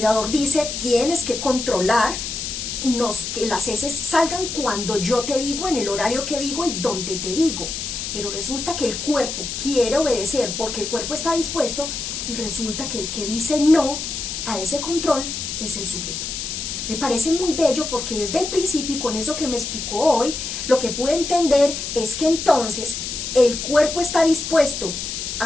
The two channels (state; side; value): noise; left; hiss, 5 dB below the sound